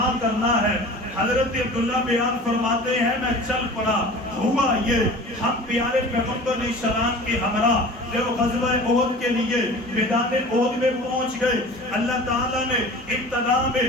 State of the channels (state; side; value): normal; both; correlation 0.40